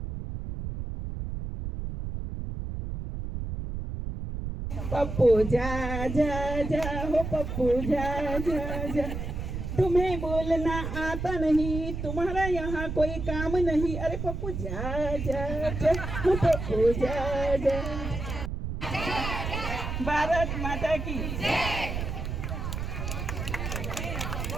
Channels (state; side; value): noise; right; rumble, 5 dB below the sound